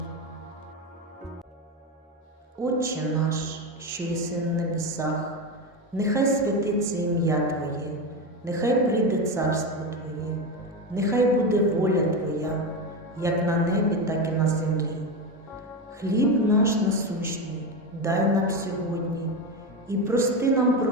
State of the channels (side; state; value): both; normal; correlation 0.16